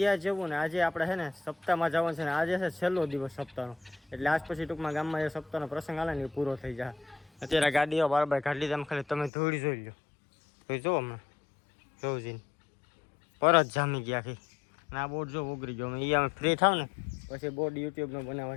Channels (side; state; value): right; drops out; at 9.3 s